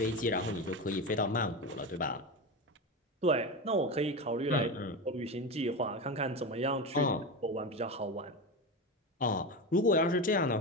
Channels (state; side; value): normal; both; correlation 0.21